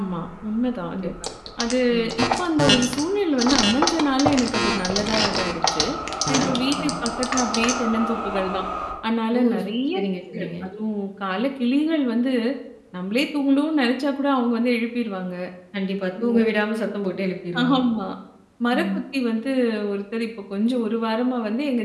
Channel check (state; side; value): identical; both; correlation 1.00